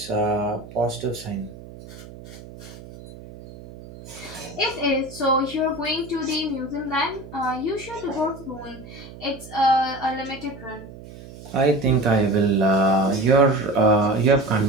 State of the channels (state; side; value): noise; right; hum, 16 dB below the sound